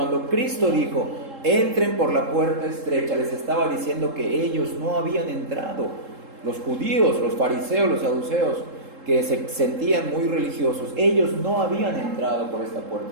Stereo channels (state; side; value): late; left; 3.7 ms